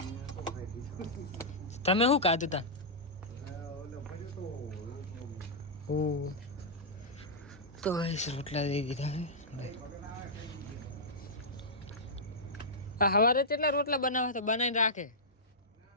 તમે શું ખાધું તા ઓ તો રોટલા દઈ દીધા હે આ સવારે કેટલા રોટલા બનાવે તો બનાવીને રાખે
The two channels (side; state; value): both; normal; correlation -0.11